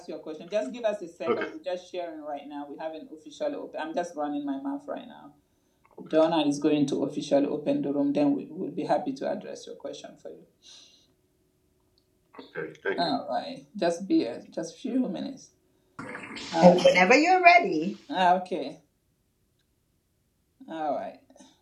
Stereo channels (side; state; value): both; identical; correlation 1.00